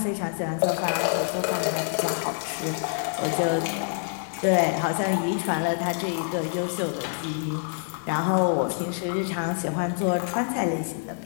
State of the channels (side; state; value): right; silent; digital silence